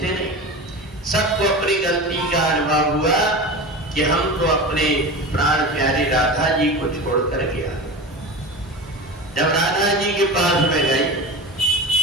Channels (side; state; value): both; normal; correlation 0.29